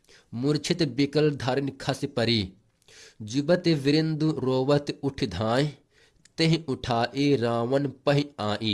मूर्छित बिकल धारिन खस परी जुबत वृंद रोवत उठ धाय तेह उठाए रावण पह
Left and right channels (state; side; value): identical; both; correlation 1.00